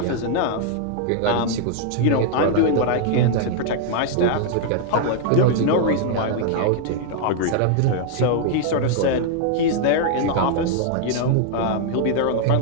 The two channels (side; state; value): both; different; correlation 0.00